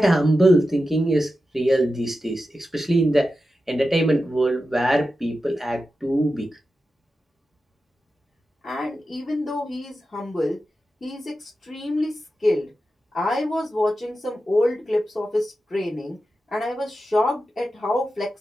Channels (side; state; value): both; normal; correlation 0.91